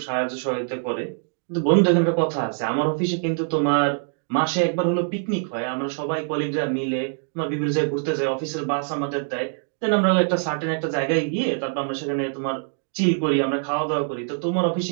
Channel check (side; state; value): left; silent; 60 dB below the other